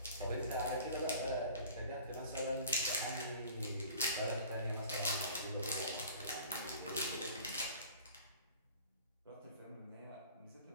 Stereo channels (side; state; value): both; inverted; correlation -0.46